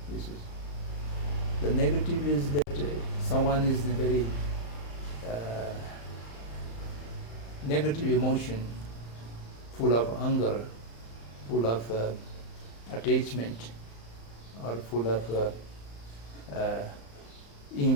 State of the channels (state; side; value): late; right; 35 ms